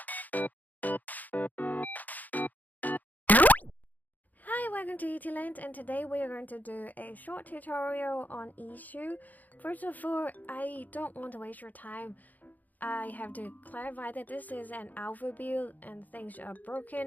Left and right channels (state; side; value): late; right; 0.082 ms